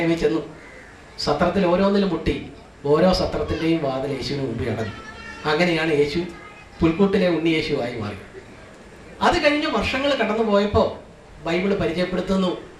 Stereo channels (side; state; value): both; identical; correlation 1.00